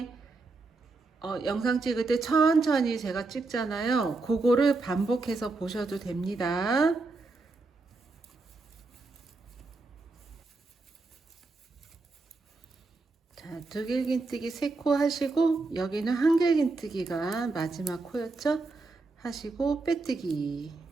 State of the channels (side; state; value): left; quieter; 3.6 dB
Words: 영상 찍을 때 천천히 제가 찍잖아요. 그거를 반복해서 보셔도 됩니다. 자, 두길긴뜨기 3코 하시고, 여기는 한길긴뜨기가 마지막 코였죠? 하시고 빼뜨기.